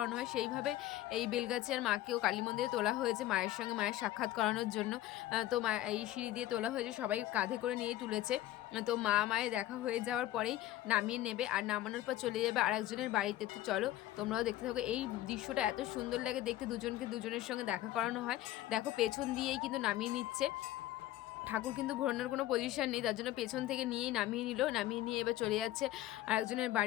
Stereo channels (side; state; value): right; quieter; 14.5 dB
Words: হয়। সেইভাবে এই বেলগাছিয়ার মাকেও কালী মন্দিরে তোলা হয়েছে মায়ের সঙ্গে মায়ের সাক্ষাৎ করানোর জন্য। তো মা এই সিঁড়ি দিয়ে তোলা হয়েছে, সবাই কাঁধে করে নিয়েই তুলেছে। তো মা মায়ের দেখা হয়ে যাওয়ার পরেই নামিয়ে নেবে আর নামানোর পর চলে যাবে আরেকজনের বাড়িতে। তো চলো তোমরাও দেখতে থাকো। এই দৃশ্যটা এত সুন্দর লাগে দেখতে, দুজনকে দুজনের সঙ্গে দেখা করানো হয়। দেখো পেছন দিয়েই কিন্তু নামিয়ে নিচ্ছে ঠাকুর কিন্তু ঘোরানোর কোনো পজিশন নেই, তার জন্য পেছন থেকে নিয়েই নামিয়ে নিল, নামিয়ে নিয়ে এবার চলে যাচ্ছে আরেকজনের